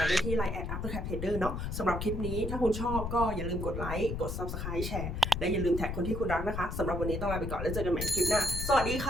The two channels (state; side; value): noise; left; rumble, 4 dB below the sound